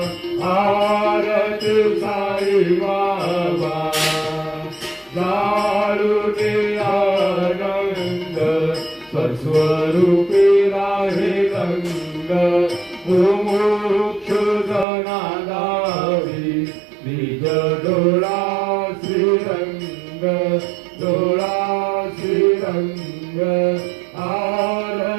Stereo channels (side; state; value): left; drops out; at 14.9 s